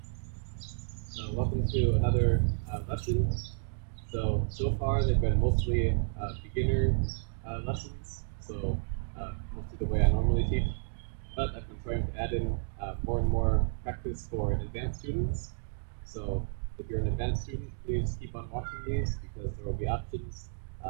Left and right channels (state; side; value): silent; left; digital silence